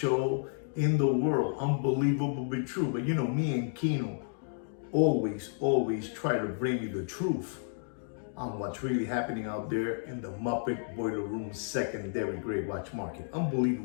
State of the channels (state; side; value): silent; right; digital silence